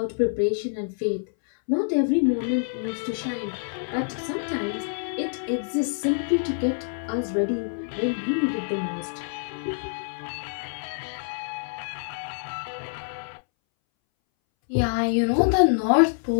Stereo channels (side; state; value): right; silent; 61 dB below the other